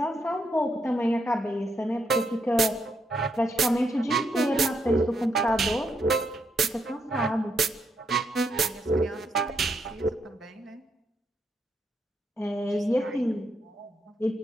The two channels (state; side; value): normal; both; correlation 0.79